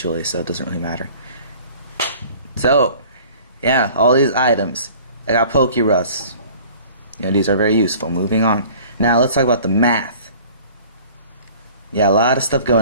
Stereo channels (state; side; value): inverted; both; correlation -0.48